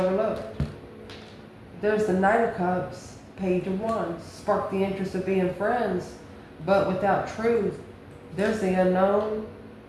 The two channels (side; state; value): both; identical; correlation 1.00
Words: There's the Knight of Cups, Page of Wands. Spark the interest of being friends, but without truth. There's the unknown.